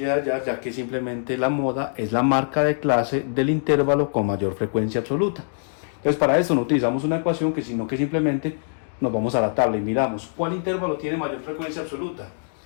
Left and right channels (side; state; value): right; silent; digital silence